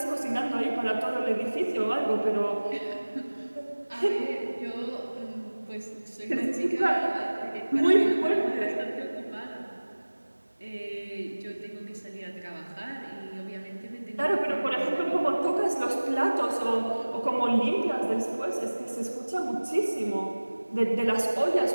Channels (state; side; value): inverted; both; correlation -1.00